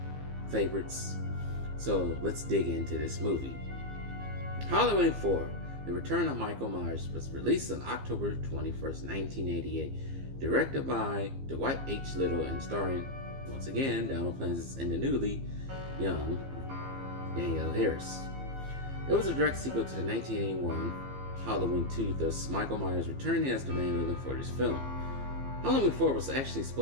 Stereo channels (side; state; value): left; late; 15 ms